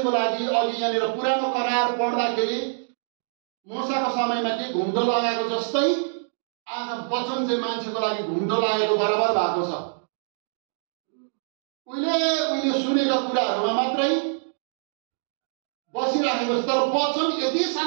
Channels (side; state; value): left; silent; digital silence